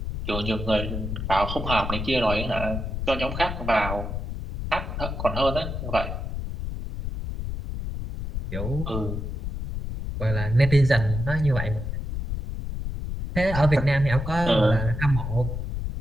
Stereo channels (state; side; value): noise; left; rumble, 5 dB below the sound